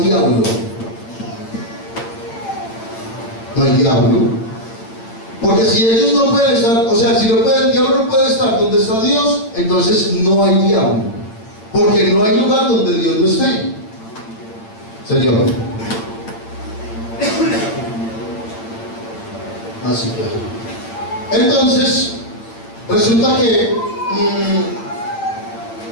No hay diablo. Porque si ellos no pueden estar, o sea, si el diablo no puede estar donde está Dios, entonces no hay diablo. Porque no hay lugar donde Dios no esté. Señor. Así claro. Entonces, resulta que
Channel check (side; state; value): right; late; 8.8 ms